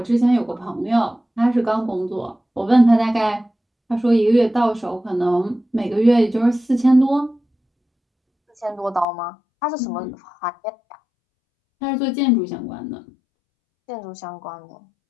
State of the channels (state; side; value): drops out; right; at 9.1 s